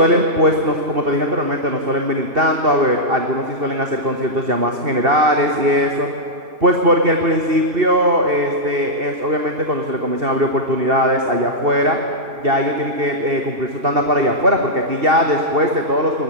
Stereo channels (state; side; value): late; left; 2.7 ms